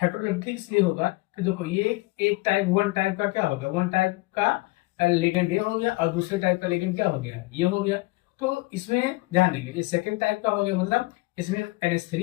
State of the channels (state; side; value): quieter; right; 22.5 dB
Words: इसलिए होगा कि देखो ये एक टाइप, वन टाइप का क्या होगा, वन टाइप का लिगेंड ये हो गया, और दूसरे टाइप का लिगेंड क्या हो गया, ये हो गया। तो इसमें ध्यान देंगे, ये सेकेंड टाइप का हो गया, मतलब इसमें